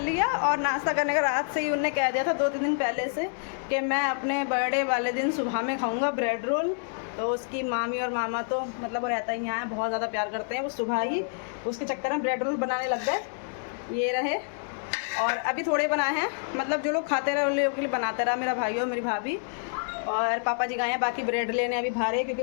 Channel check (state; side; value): silent; right; digital silence